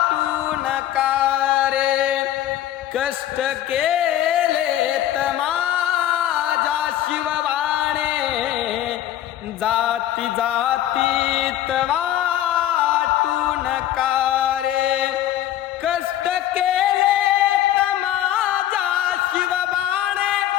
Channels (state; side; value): quieter; right; 12.3 dB